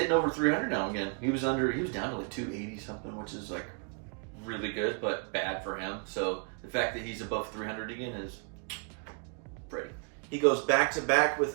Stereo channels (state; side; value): quieter; left; 37.7 dB